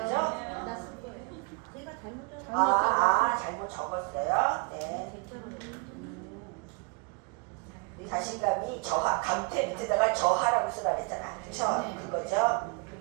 나쓴 거예요. 제가 잘못 적은 잘못 적었어요. 네. 자신감이 저하, 감퇴 밑에다가 저하라고 쓰라 그랬잖아. 그쵸? 네. 그거죠?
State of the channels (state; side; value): quieter; left; 32.1 dB